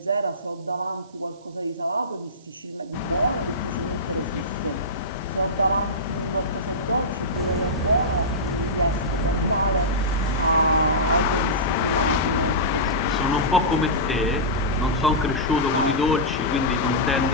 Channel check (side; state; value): right; noise; hiss, 30 dB below the sound